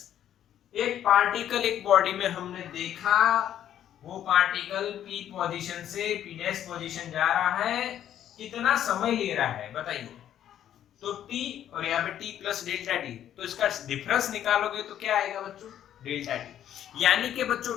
एक पार्टिकल एक बॉडी में हमने देखा, वो पार्टिकल पी पोजीशन से पी डैश पोजीशन जा रहा है, कितना समय ले रहा है बताइए? तो t और यहाँ पे t प्लस डेल्टा टी, तो इसका डिफरेंस निकालोगे तो क्या आएगा बच्चों? Delta T. यानी कि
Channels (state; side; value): quieter; right; 10.8 dB